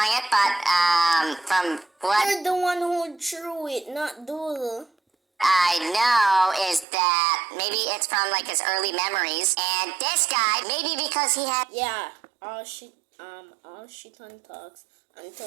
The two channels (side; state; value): left; drops out; at 6.9 s